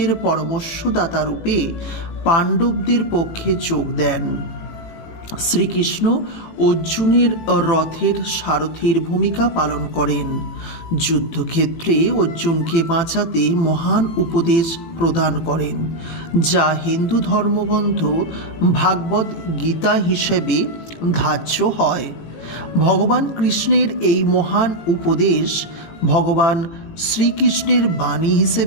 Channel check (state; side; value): late; right; 18 ms